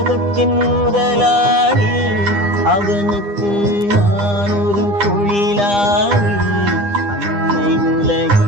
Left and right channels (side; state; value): left; late; 9.9 ms